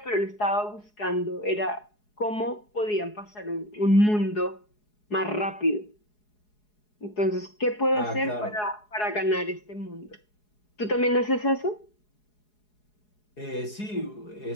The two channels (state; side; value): late; right; 4.8 ms